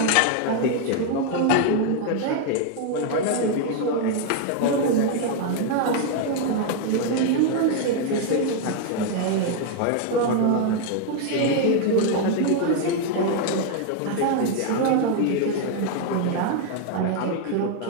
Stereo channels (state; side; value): different; both; correlation 0.00